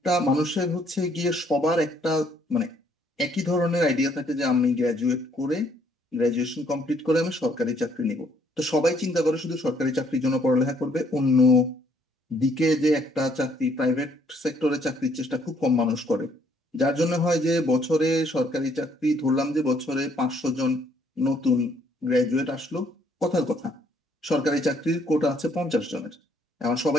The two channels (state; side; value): normal; both; correlation 0.66